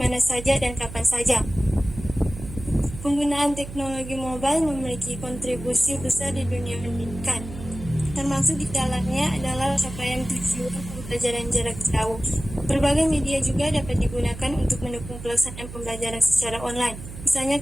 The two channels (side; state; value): right; noise; hum, 12 dB below the sound